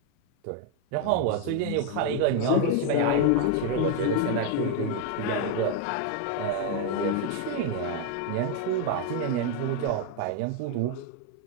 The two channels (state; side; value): different; both; correlation 0.01